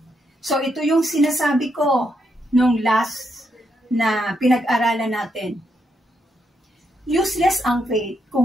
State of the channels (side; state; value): both; normal; correlation 0.80